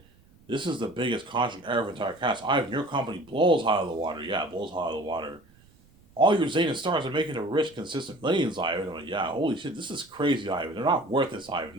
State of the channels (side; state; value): right; noise; rumble, 28 dB below the sound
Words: this is the biggest contract ever for entire cast. Ivan, your company blows high out of the water. Yeah, it blows high out of the water. All your Zayn stars are making a rich, consistent millions, Ivan. I'm like, yeah, holy shit, this is crazy, Ivan. They're not worth this, Ivan.